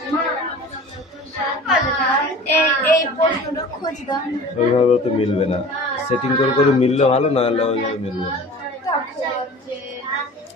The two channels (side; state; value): both; normal; correlation 0.41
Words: ওইভাবে তো মিলবে না, সেটিং করে করে মিললে ভালো, না হলে ওইভাবে মিলবে না।